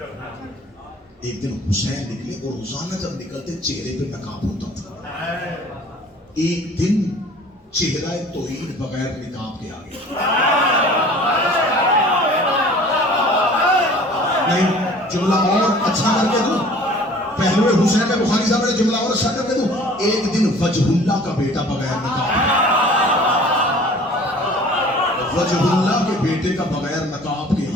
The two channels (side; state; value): both; normal; correlation 0.48